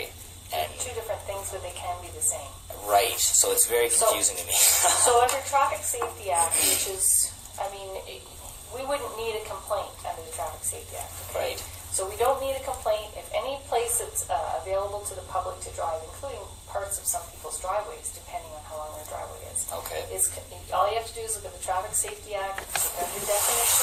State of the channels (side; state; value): both; identical; correlation 1.00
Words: And Two different things, but they can be the same. right, so it's very confusing to me. So under Traffic Safety Act, which is, we wouldn't need a complaint under the Traffic Safety Act. Okay? Right. So we don't need a complaint if any place that's available to the public to drive, including parts of some people's driveways, depending on how long their driveway is. Okay. All you have to do is look at the Traffic Safety Act, look under